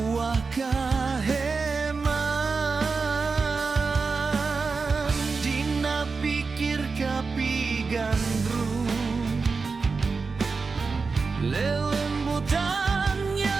kaheman dina pikir kapigandrung lelembutan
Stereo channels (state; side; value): quieter; left; 4.5 dB